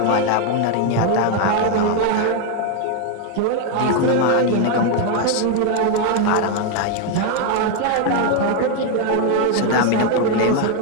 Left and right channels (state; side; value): different; both; correlation 0.01